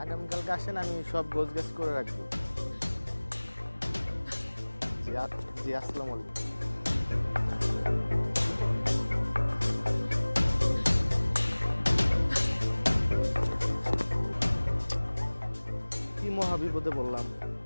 আগামীকালকে আসেন, আমি সব গোছগাছ করে রাখবো। জি আসসালামু আলাইকুম। কি মহাবিপদে বললাম,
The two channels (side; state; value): both; inverted; correlation -1.00